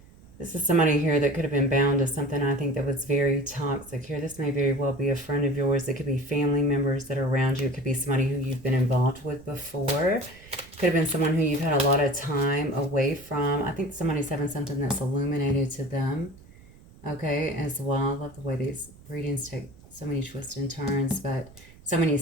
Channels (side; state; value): right; noise; rumble, 23 dB below the sound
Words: This is somebody here that could have been bound to something, I think, that was very toxic here. This may very well be a friend of yours. It could be family members that are around you. It could be somebody who you've been involved with before. Could have been someone who you've had a lot of time away from. I think somebody's having something that's illuminated to them, okay, as well. I love the way these readings take so many twists and turns, but so many